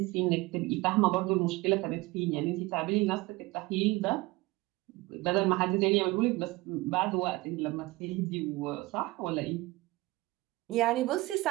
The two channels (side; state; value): left; quieter; 20.7 dB